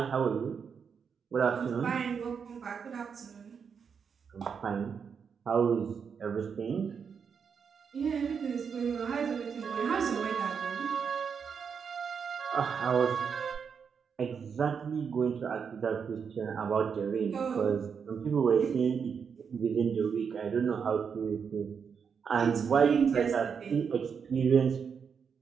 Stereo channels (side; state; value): left; quieter; 6.5 dB